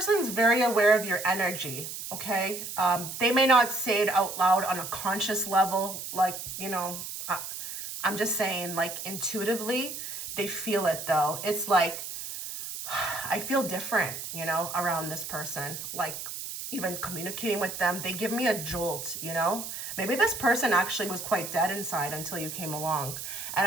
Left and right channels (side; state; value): right; noise; hiss, 8 dB below the sound